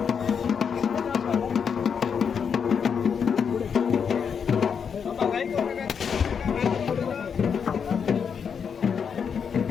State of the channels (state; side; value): quieter; right; 6.8 dB